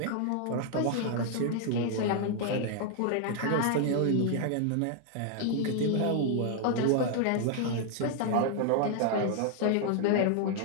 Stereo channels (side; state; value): both; different; correlation 0.00